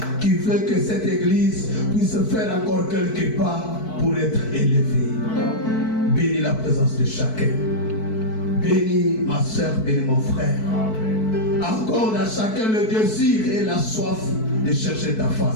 qui veut que cette église puisse faire encore quelques pas pour être élevée. Bénis la présence de chacun. Bénis ma soeur, bénis mon frère. Accorde à chacun le désir et la soif de chercher ta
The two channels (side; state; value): right; late; 4.6 ms